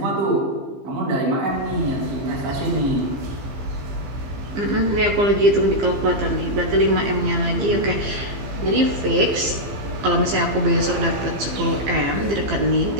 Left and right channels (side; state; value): left; late; 15 ms